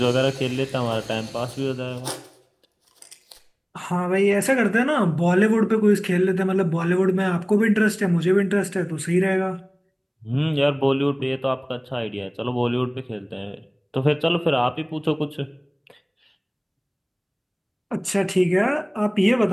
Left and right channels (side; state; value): both; identical; correlation 1.00